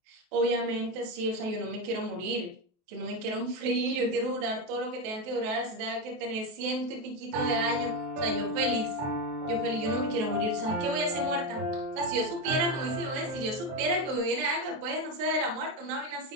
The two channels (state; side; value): late; left; 23 ms